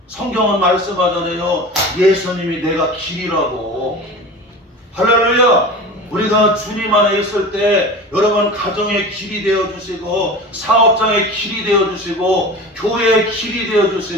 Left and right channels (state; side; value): normal; both; correlation 0.34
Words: 성경은 말씀하잖아요. 예수님이 내가 길이라고. 할렐루야. 우리가 주님 안에 있을 때 여러분 가정의 길이 되어주시고 사업장의 길이 되어주시고 교회의 길이